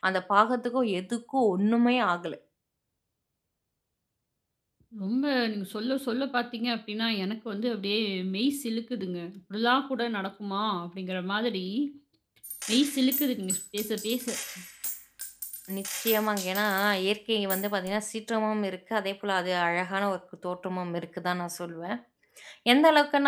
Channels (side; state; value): both; identical; correlation 1.00